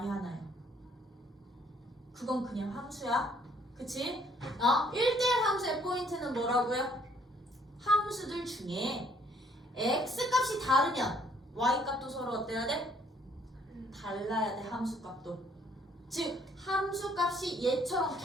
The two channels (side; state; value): both; normal; correlation 0.64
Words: 하나야. 그건 그냥 함수야. 그치? 1대1 함수의 포인트는 뭐라고요? 함수들 중에 x 값이 다르면 y 값도 서로 어때야 돼? 달라야 돼. 함수 값도. 즉 함수 값이 얘처럼